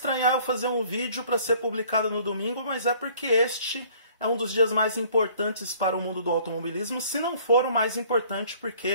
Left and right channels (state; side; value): inverted; both; correlation -0.56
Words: eu fazer um vídeo para ser publicado no domingo, mas é porque este é um dos dias mais importantes para o mundo do automobilismo, se não for o mais importante,